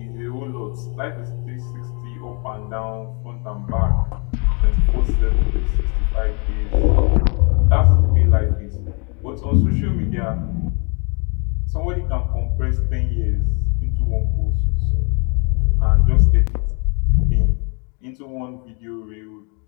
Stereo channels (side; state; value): right; quieter; 35.5 dB